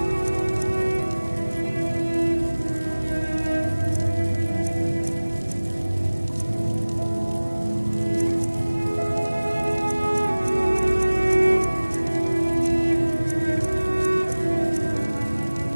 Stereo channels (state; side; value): inverted; both; correlation -1.00